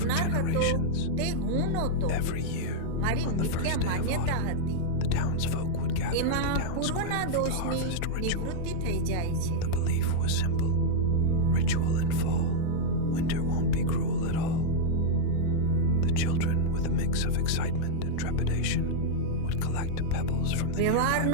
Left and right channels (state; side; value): different; both; correlation -0.02